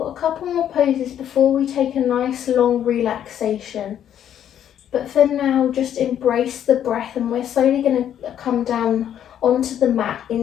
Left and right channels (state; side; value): quieter; right; 10.1 dB